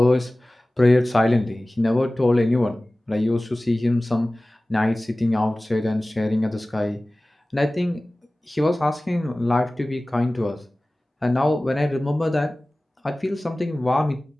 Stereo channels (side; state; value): both; normal; correlation 0.98